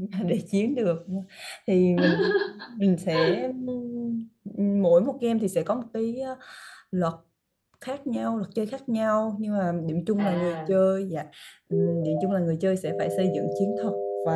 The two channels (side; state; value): both; identical; correlation 1.00